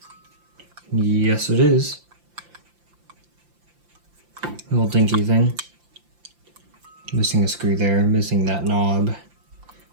Yes, it is. Little dinky thing. Missing a screw there, missing that knob.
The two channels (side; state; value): left; late; 5.8 ms